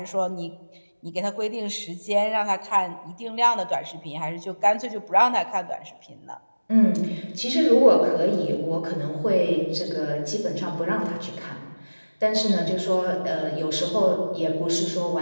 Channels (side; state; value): both; inverted; correlation -1.00